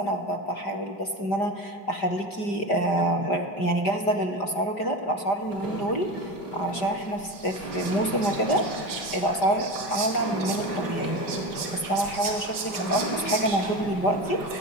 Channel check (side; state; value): right; late; 5.0 ms